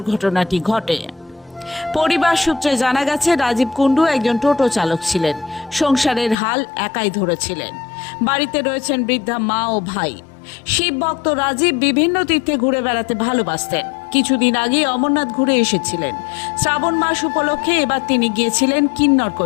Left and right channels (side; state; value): right; drops out; at 6.4 s